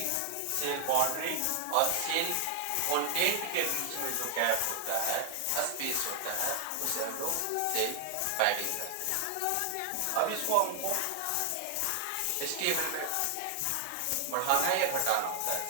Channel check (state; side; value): different; both; correlation 0.00